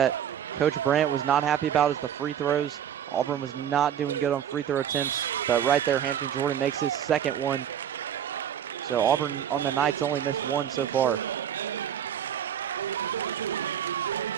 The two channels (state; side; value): quieter; left; 9.4 dB